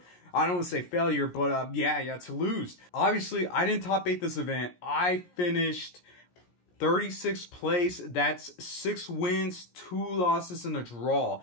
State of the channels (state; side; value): late; right; 17 ms